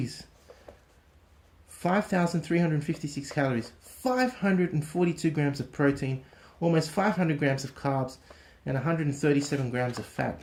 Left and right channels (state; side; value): identical; both; correlation 1.00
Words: 5,356 calories. 542 grams of protein, almost 500 grams of carbs, and 137 grams of fat.